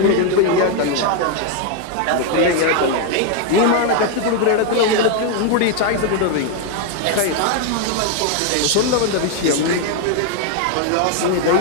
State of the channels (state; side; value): different; both; correlation 0.01